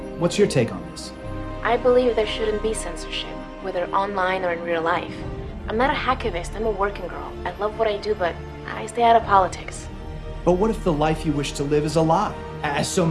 what's your take on this? I believe there shouldn't be censorship, whether online or in real life. I'm not a hacktivist, I'm a working girl. I love what I do, but I stay out of politics. But what if the life you wish to live is a lie, as so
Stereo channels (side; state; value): both; identical; correlation 1.00